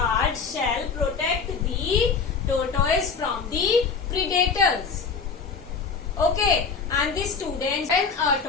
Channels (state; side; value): quieter; right; 5.3 dB